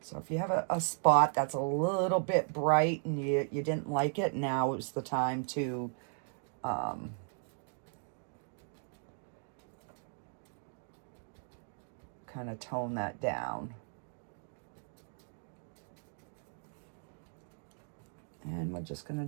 So if you have a spot that's a little bit bright and you didn't like it, now is the time to kind of tone that down. And we're just going to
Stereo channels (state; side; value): silent; left; 53 dB below the other